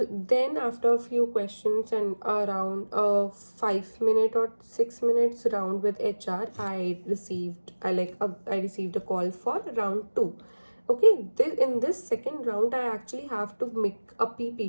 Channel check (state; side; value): inverted; both; correlation -1.00